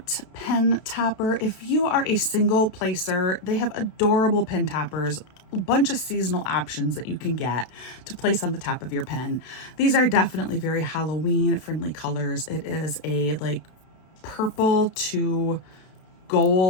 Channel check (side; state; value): right; late; 32 ms